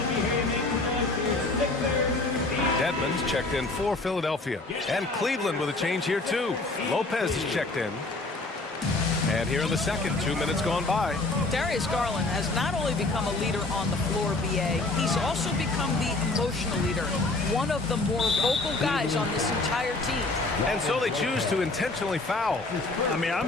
Dedmon's checked in for Philadelphia. And Cleveland with a change here too. Lopez is checked in. And here in the second, 2 minutes gone by. Darius Garland has not only become a leader on the floor, BA, he's also become the emotional leader, one of the more vocal guys on this entire team. And so they choose to intentionally foul. I mean,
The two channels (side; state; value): right; quieter; 3.2 dB